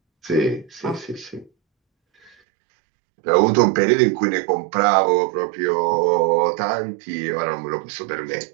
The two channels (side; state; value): left; drops out; at 2.3 s